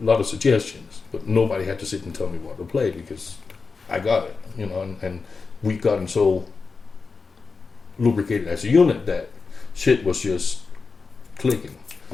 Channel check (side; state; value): right; quieter; 4.6 dB